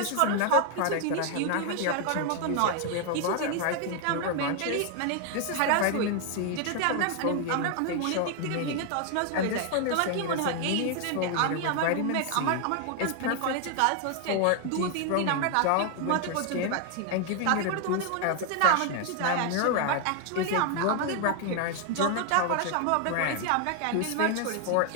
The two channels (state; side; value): different; both; correlation 0.00